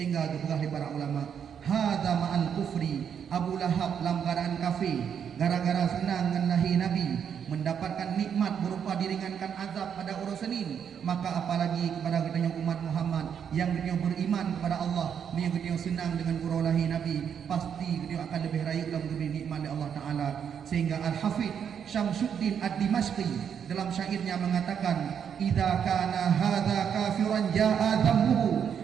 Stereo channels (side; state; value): left; quieter; 7.9 dB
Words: dipegah di para ulama, hadza ma'al kufri, Abu Lahab langgaran kafir gara-gara senang dengan lahir Nabi, mendapatkan nikmat berupa diringankan azab pada urusanin, maka apalagi kepada kita umat Muhammad yang kita beriman kepada Allah, yang kita senang dengan urus lahir Nabi, pasti kita akan lebih raya dalam diberi nikmat oleh Allah Ta'ala. Sehingga Al-Hafidh Syamsuddin Ad-Dimashqi dalam syairnya mengatakan, idza kana hadza kafiran jaa dhammuhu